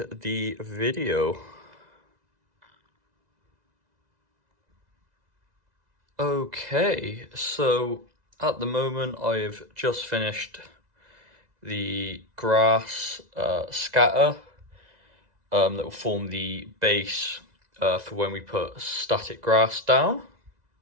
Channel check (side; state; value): left; late; 2.0 ms